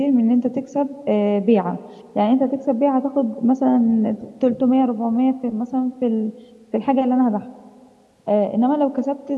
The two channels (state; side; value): identical; both; correlation 1.00